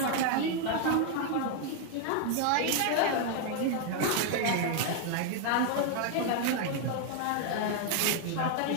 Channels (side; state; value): both; different; correlation 0.00